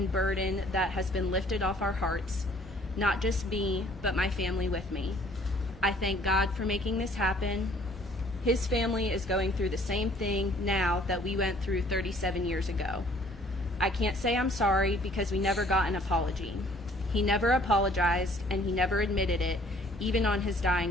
burden that has been lifted off our hearts, not just me, but my family with me. I thank God for making this happen. His family is going through the same thing now that we went through 37 years ago. I can't say I'm sorry because we never got an apology. He never apologized, and he never admitted it, even on his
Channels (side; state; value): both; normal; correlation 0.58